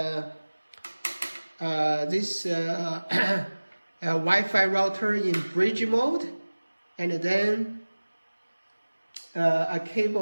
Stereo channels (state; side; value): inverted; both; correlation -1.00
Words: Wi-Fi router in bridge mode, and then a